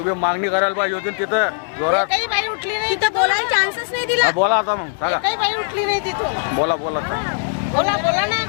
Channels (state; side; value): silent; right; 66 dB below the other